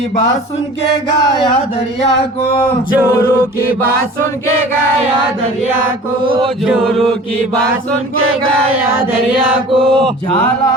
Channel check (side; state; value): both; normal; correlation 0.43